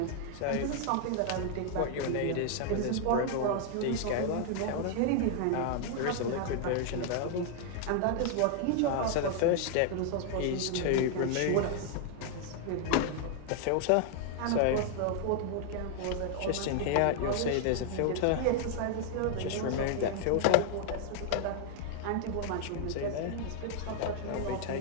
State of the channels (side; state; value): both; different; correlation 0.00